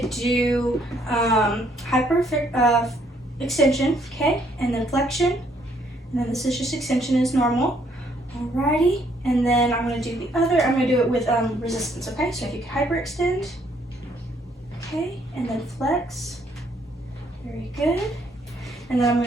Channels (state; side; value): normal; both; correlation 0.68